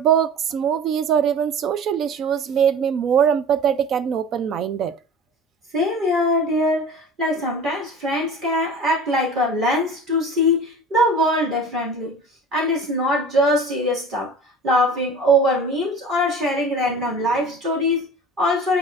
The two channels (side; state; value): both; normal; correlation 0.38